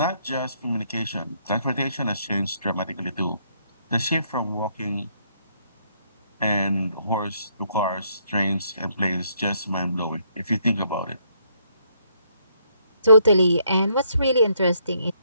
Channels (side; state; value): both; inverted; correlation -0.71